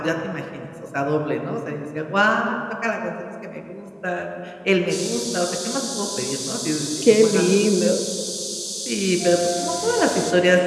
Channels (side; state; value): both; identical; correlation 1.00